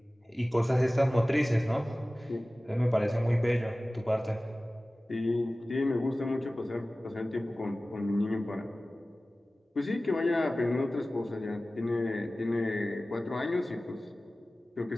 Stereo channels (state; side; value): normal; both; correlation 0.97